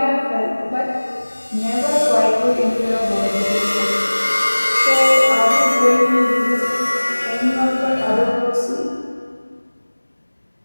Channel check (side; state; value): both; inverted; correlation -1.00